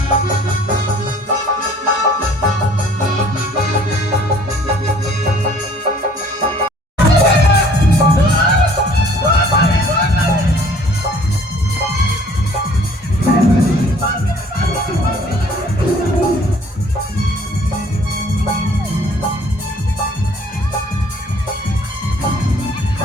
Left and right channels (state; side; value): normal; both; correlation 0.55